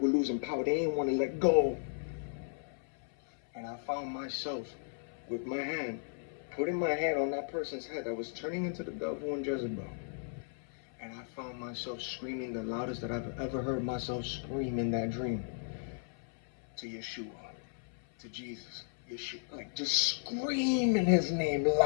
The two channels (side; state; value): right; silent; 54 dB below the other